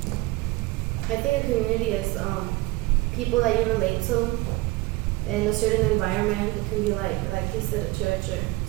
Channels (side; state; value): left; quieter; 20.7 dB